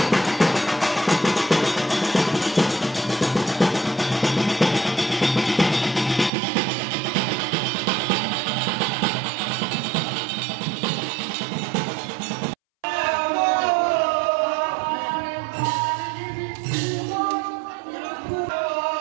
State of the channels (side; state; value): left; drops out; at 6.3 s